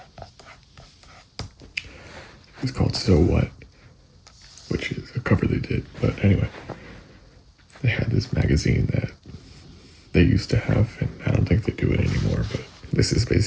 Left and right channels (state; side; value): identical; both; correlation 1.00